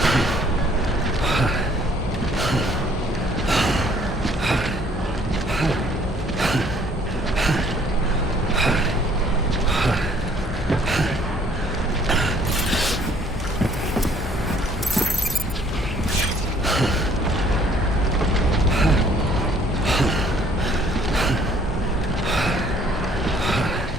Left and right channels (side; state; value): both; normal; correlation 0.60